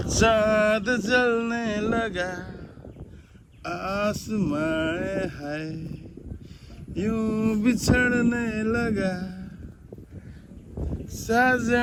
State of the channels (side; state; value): both; identical; correlation 1.00